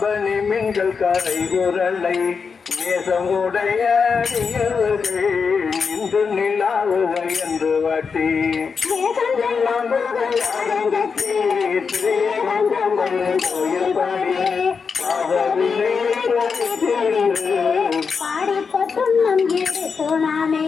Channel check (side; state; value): right; quieter; 5.5 dB